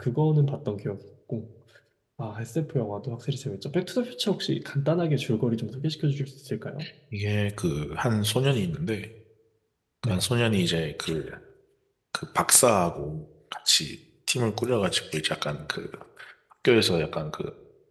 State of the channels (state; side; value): identical; both; correlation 1.00